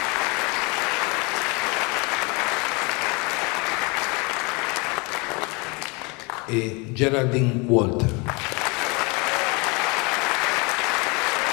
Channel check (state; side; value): quieter; right; 29.1 dB